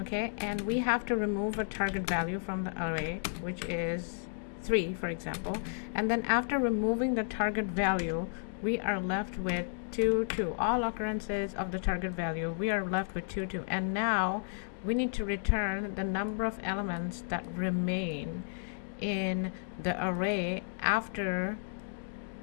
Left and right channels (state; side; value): silent; right; digital silence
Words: okay, and we have to remove a target value from the array, which is 3, for example, and then after removing the target value, we are left with 2, 2. All occurrences of the target value, we are left with 2, 2. And now we need to return the number of elements that remain in the array after